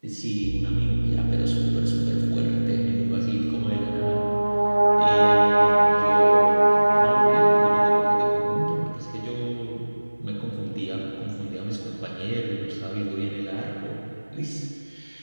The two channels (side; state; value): both; inverted; correlation -1.00